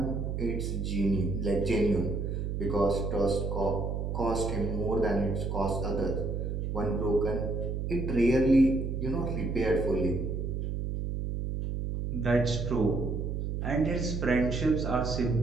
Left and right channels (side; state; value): right; noise; hum, 2 dB below the sound